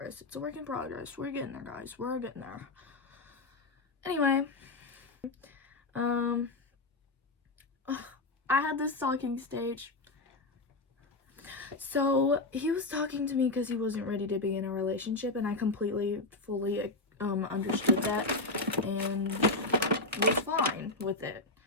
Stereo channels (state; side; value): quieter; right; 3.0 dB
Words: We're getting there, guys. We're getting there. Anyway, I had this talking stage. So he was talking to me because he wasn't ready to be in a relationship, and I completely, fully understood that and was fine with it.